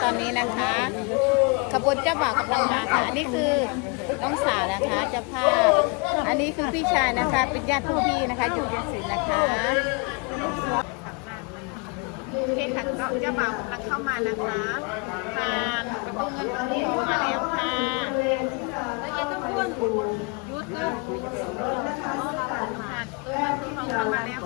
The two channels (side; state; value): right; quieter; 32.6 dB